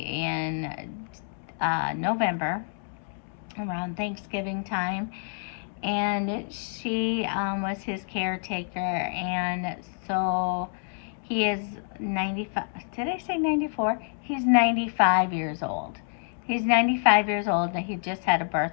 November, around Thanksgiving time, and she was his caretaker, and so he is 95. Did I say 94? He's 95 years old. He's 95 years old. He just had a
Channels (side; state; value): right; silent; 60 dB below the other